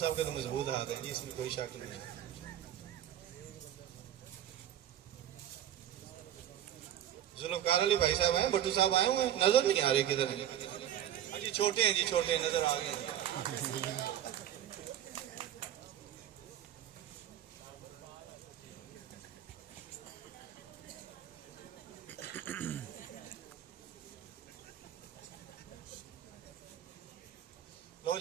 के तो मजबूत हाथ है जी, इसमें कोई शक नहीं। जुल्फकार अली भाई साहब हैं, भट्टू साहब आए हुए हैं, नजर नहीं आ रहे किधर हैं जी। छोटे हैं जी, छोटे हैं, नजर आ गए हैं। लो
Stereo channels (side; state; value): left; quieter; 11.2 dB